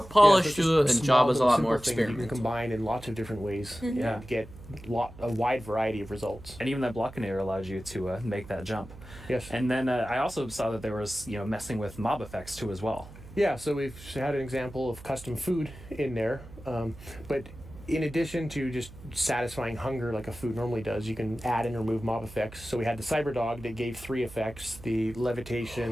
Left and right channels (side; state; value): right; noise; hum, 17 dB below the sound